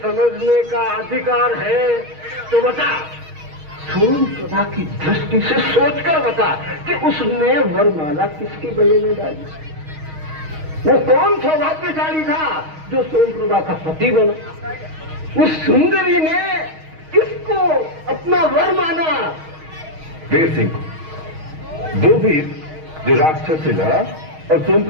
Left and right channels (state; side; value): late; left; 6.4 ms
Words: का अधिकार है तो बता, सोमप्रभा की दृष्टि से सोचकर बता कि उसने वरमाला किसके गले में डाली? वो कौन सौभाग्यशाली था जो सोमप्रभा का पति बना? उस सुंदरी ने किसको अपना वर माना? वीर सिंह को, वो वीर जो राक्षस से लड़ा और